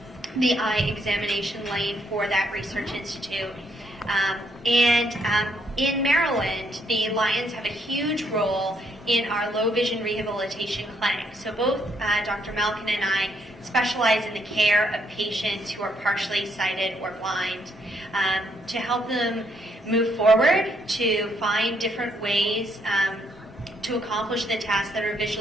the eye examination lane for that research institute. In Maryland, the Lions have a huge role in our low vision rehabilitation clinic. So both Dr. Malkin and I specialize in the care of patients who are partially sighted or blind, to help them move forward, to find different ways to accomplish the tasks that are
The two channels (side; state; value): both; normal; correlation 0.72